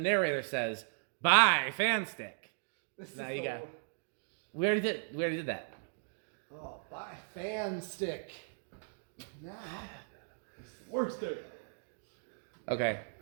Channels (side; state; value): left; silent; digital silence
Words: says, "Buy fan stick." This Now is you the- got. We already did that. Oh, buy fan stick. Now. Worst day. Okay.